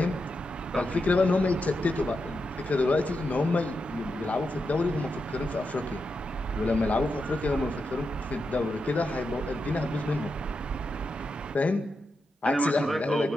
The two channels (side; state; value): both; normal; correlation 0.86